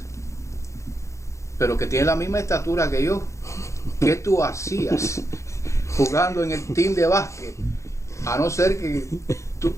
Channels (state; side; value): late; right; 0.14 ms